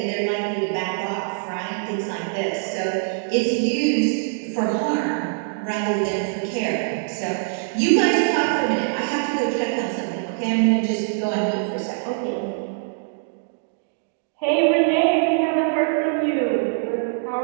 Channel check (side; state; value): left; silent; digital silence